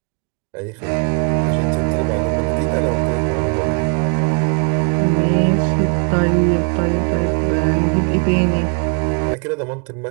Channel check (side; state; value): left; quieter; 38.0 dB